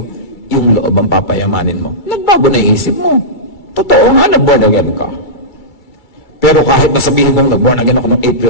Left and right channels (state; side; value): late; right; 2.3 ms